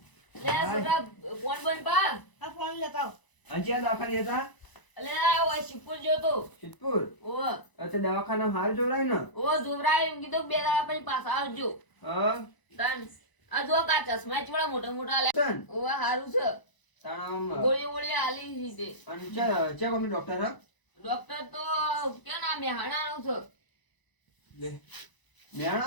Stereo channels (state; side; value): late; right; 1.0 ms